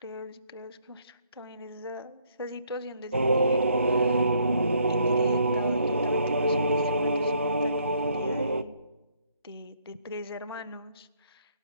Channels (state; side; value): inverted; both; correlation -0.68